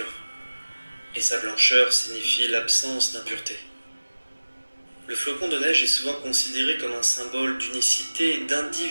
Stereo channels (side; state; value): both; inverted; correlation -1.00